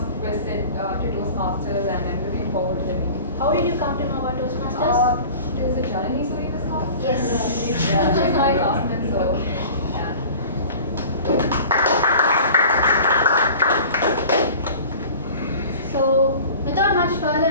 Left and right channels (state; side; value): inverted; both; correlation -0.42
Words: visit to Toastmasters and I'm looking forward to the meeting. How did you come to know about Toastmasters? Is it Janani who in this class? Yes. She's my classmate, so yeah. So, without much further